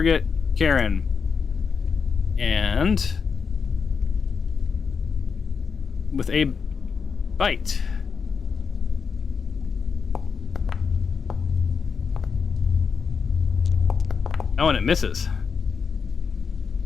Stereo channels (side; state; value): right; quieter; 5.8 dB